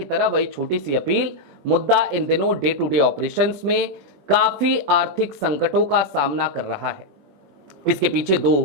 तरह वही छोटी सी अपील। मुद्दा इन दिनों डे टू डे ऑपरेशंस में काफी आर्थिक संकटों का सामना कर रहा है। इसके पीछे दो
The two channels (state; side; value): late; left; 21 ms